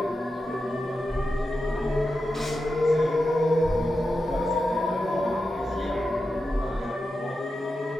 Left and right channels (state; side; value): normal; both; correlation 0.90